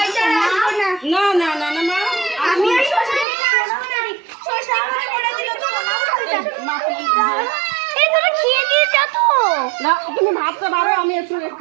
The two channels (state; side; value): drops out; left; at 3.2 s